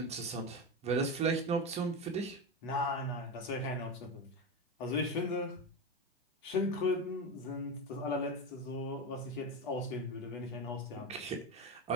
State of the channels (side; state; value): both; normal; correlation 0.19